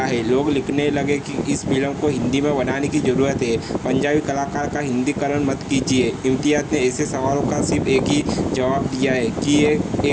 है। लोग लिखने लगे कि इस फिल्म को हिंदी में बनाने की ज़रूरत है, पंजाबी कलाकार का हिंदीकरण मत कीजिए। इम्तियाज़ ने ऐसे सवालों का सिर्फ एक ही जवाब दिया है कि ये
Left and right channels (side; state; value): both; identical; correlation 1.00